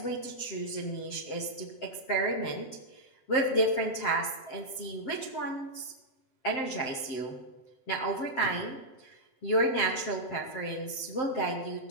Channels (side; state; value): right; late; 7.7 ms